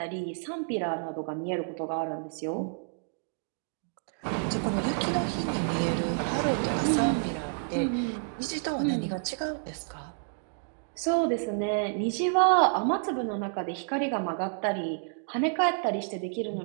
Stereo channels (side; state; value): left; silent; digital silence